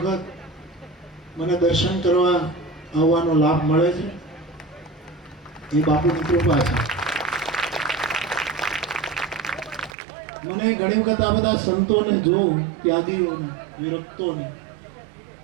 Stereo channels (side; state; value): left; drops out; at 10.0 s